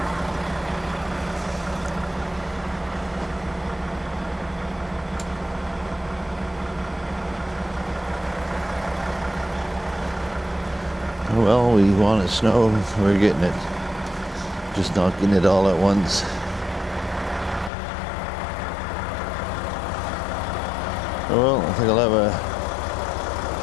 Well, we want snow, we're getting it. Just not getting it all at once. Well, I think I'll have a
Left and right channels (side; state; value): right; drops out; at 17.7 s